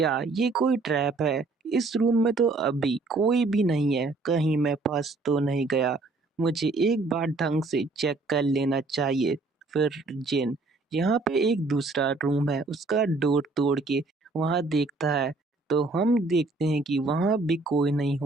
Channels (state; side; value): quieter; left; 3.5 dB